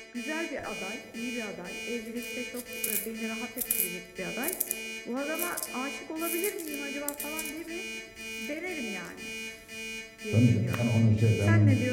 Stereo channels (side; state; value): both; identical; correlation 1.00